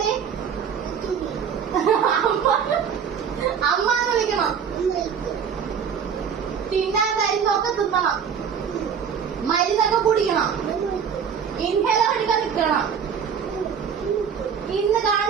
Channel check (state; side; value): quieter; left; 7.3 dB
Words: അമ്മാന്ന് വിളിക്കണം. തിന്നാൻ മരുന്നൊക്കെ തിന്നണം. മരുന്നൊക്കെ കുടിക്കണം. ഇൻഹേലർ എടുക്കാൻ നിൽക്കണം. ഇന്ന്